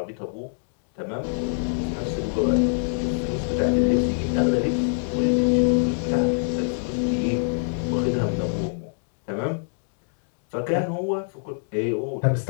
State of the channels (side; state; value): right; silent; digital silence